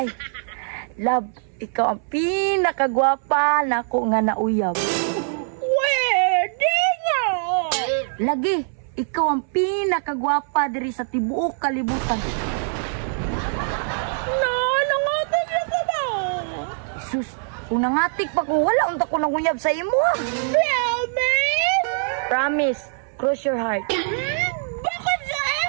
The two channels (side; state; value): left; silent; 64 dB below the other